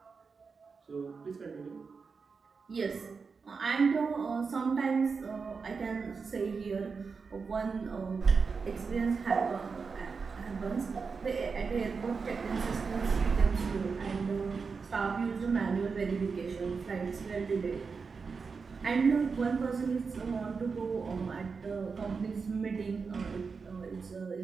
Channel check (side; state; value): left; quieter; 5.1 dB